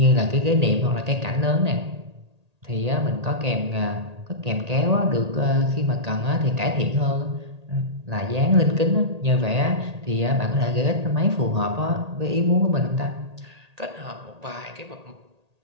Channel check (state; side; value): late; left; 1.8 ms